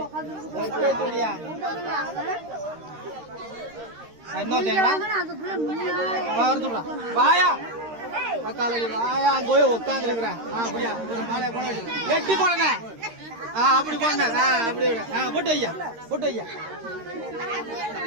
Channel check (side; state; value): left; late; 13 ms